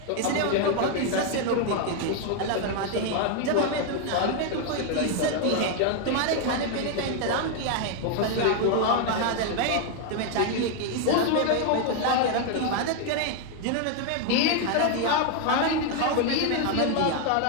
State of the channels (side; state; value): both; different; correlation 0.00